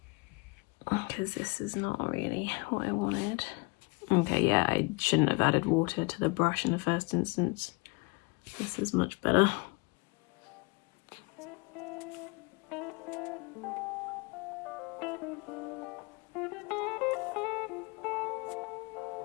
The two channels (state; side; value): quieter; right; 29.0 dB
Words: because this is not really what I wanted. Okay, yeah, I shouldn't have added water to the brush in the first instance. This is much better.